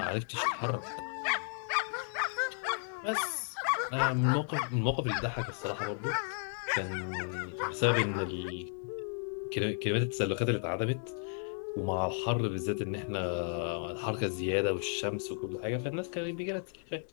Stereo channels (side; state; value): right; silent; 55 dB below the other